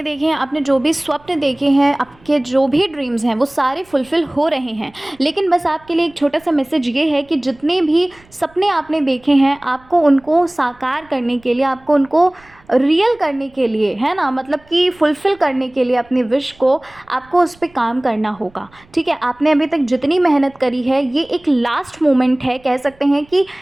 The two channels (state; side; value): noise; right; rumble, 29 dB below the sound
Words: देखे हैं, आपने जो भी स्वप्न देखे हैं, आपके जो भी ड्रीम्स हैं वो सारे फुलफ़िल हो रहे हैं। लेकिन बस आपके लिए एक छोटा सा मैसेज ये है कि जितने भी सपने आपने देखे हैं, आपको उनको साकार करने के लिए, आपको उनको रियल करने के लिए, है ना, मतलब कि फुलफ़िल करने के लिए अपनी विश को आपको उस पे काम करना होगा, ठीक है? आपने अभी तक जितनी मेहनत करी है, ये एक लास्ट मोमेंट है, कह सकते हैं कि